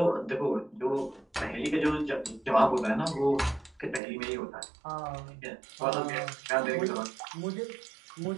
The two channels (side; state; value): left; drops out; at 4.0 s